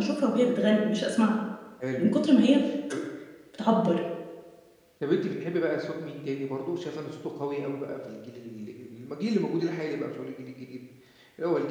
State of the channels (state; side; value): identical; both; correlation 1.00